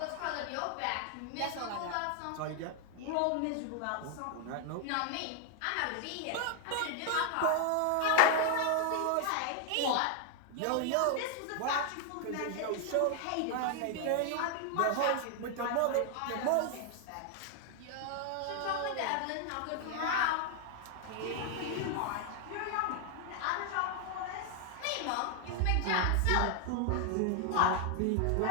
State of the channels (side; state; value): both; different; correlation 0.00